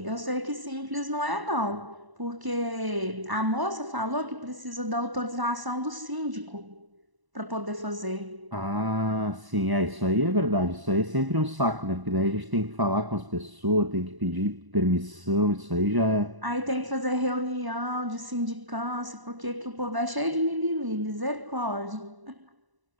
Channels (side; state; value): left; late; 1.0 ms